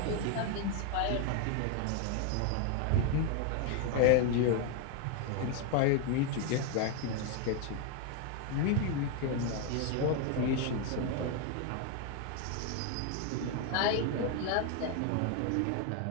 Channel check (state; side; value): different; both; correlation 0.01